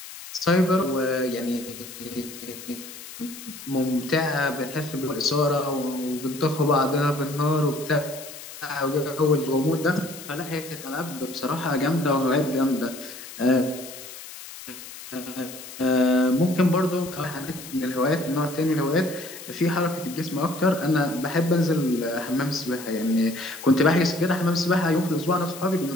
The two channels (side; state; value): left; noise; hiss, 14 dB below the sound